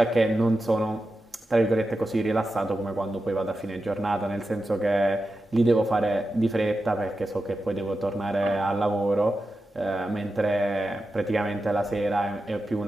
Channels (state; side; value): normal; both; correlation 0.91